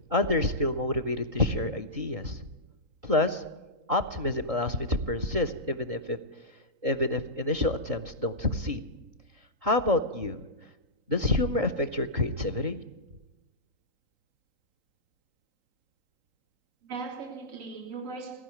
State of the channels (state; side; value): late; left; 3.8 ms